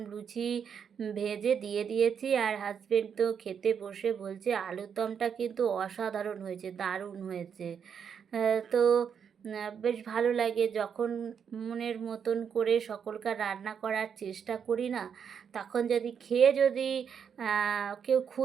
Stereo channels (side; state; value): left; quieter; 7.3 dB